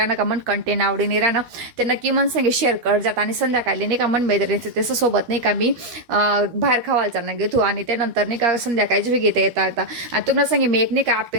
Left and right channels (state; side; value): late; left; 12 ms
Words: का मन कंटेंट आवडी नाही राहणं, ते नक्की मन सांगे शेअर कर जात. आणि संध्याकाळी नाही का मन मैत्रिणीचं त्याचं सोबत नाही का मी बाहेर खावायचा ना घेतो आणि त्यानंतर नाही का संध्याकाळची बी घेता येता आणि तुम्हाला सांगे मी एक नाही का